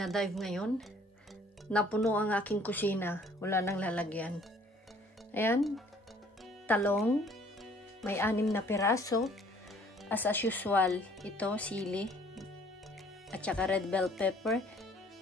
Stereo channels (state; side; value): normal; both; correlation 0.57